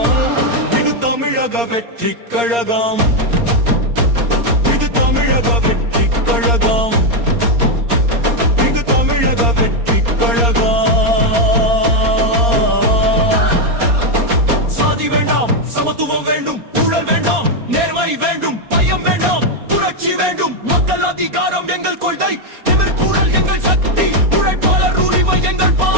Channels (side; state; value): left; late; 4.3 ms